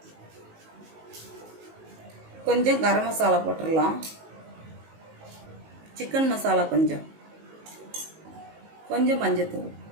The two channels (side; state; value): left; late; 19 ms